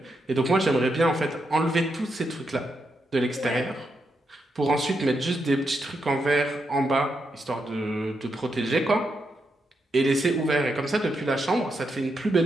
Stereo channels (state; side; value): normal; both; correlation 0.82